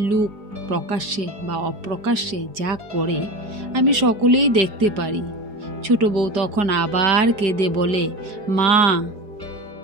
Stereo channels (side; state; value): left; late; 4.8 ms